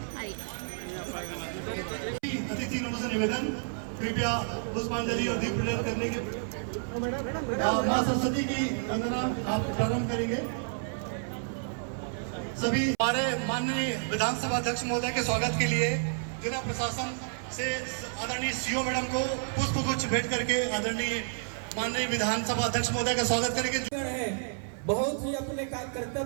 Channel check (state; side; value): silent; left; 58 dB below the other